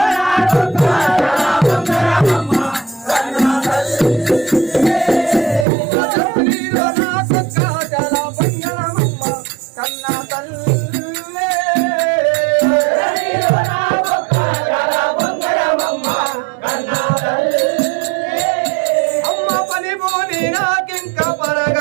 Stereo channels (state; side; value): drops out; left; at 5.7 s